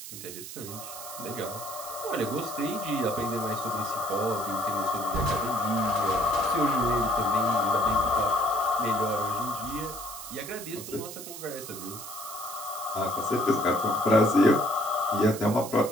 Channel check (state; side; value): noise; right; hiss, 11 dB below the sound